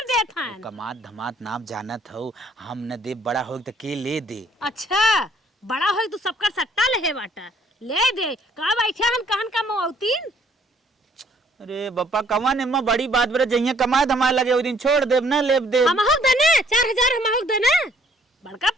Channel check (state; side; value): normal; both; correlation 0.62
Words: देत हैं। कमात धमात नाम जानत हो हम न दे बड़ा हो तो के ले दे। अच्छा बड़ा हो तो सबका सट्टा ले बाटा ले दे का बैठे हम कहन का मौतीन। अरे बप्पा कमा ने मां बड़ी बात बरे जइया कमाए धमाए लगे ओ दिन छोड़ देब ना लेब दे हम हक देने 4000 हम हक देने बड़का